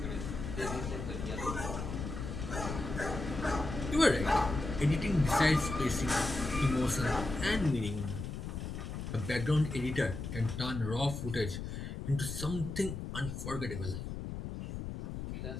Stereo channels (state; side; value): noise; left; rumble, 6 dB below the sound